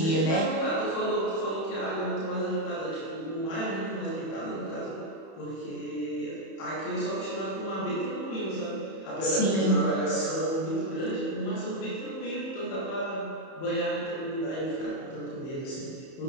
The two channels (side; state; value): right; late; 31 ms